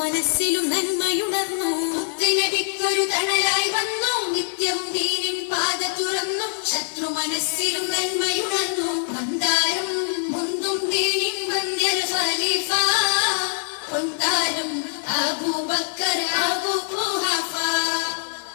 മനസ്സിലും നന്മയുണർന്നു മുത്തനബിക്കൊരു തണലായി വന്നു നിത്യവും ദീനിൻ പാത തുറന്നു ശത്രു മനസ്സിലും നന്മയുണർന്നു മന്ദാരം മുന്തും ദീനിൻ മന്ദിർ ഖലീഫ പൊന്താരം അബൂബക്കർ അബൂ ഖുഹഫ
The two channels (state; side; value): silent; right; digital silence